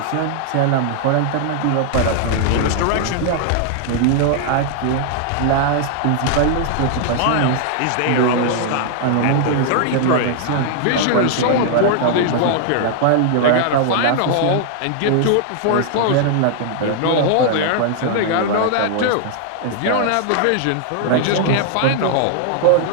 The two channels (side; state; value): both; different; correlation 0.00